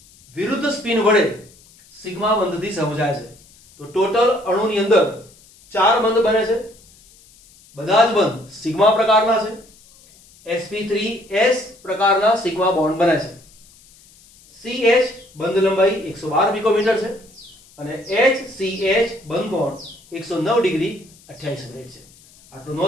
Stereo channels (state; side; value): noise; left; hiss, 26 dB below the sound